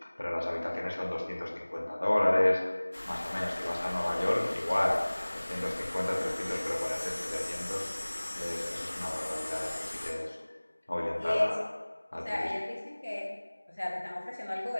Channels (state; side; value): inverted; both; correlation -1.00